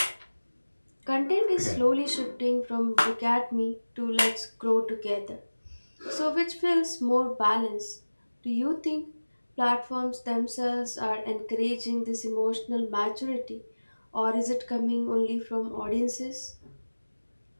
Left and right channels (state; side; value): inverted; both; correlation -1.00